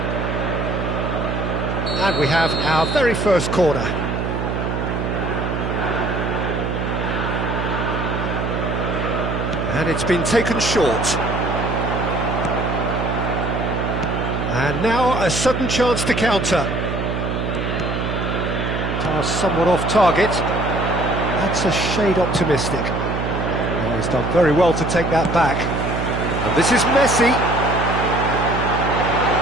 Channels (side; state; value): right; noise; hum, 2 dB below the sound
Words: And we have our very first corner. And it's been taken short. And now a sudden chance to counter. Pass somewhat off target. That's a shade optimistic. Oh, he's done very well to take that back. And this is Messi.